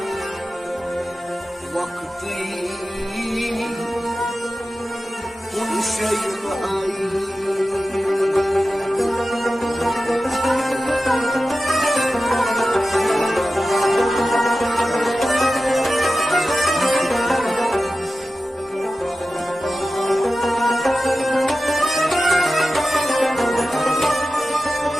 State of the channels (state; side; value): normal; both; correlation 0.94